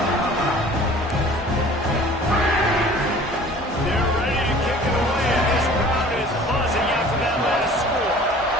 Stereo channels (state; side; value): normal; both; correlation 0.47